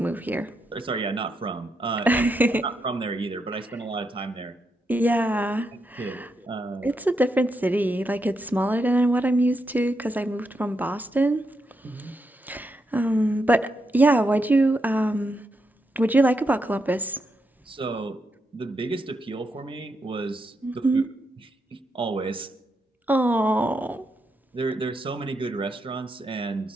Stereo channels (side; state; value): both; normal; correlation 0.82